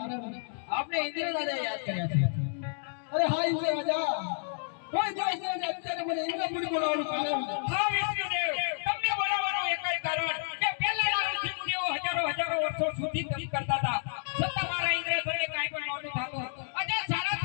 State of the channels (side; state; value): right; silent; digital silence